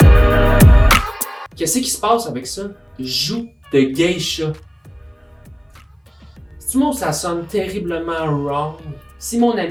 Qu'est-ce qui se passe avec ça? Joue de geisha. C'est-tu moi où ça sonne terriblement wrong? Si mon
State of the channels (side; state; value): both; identical; correlation 1.00